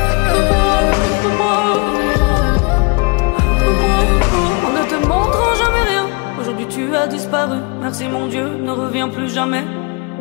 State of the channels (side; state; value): right; quieter; 31.4 dB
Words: Tu as disparu, merci mon Dieu, ne reviens plus jamais.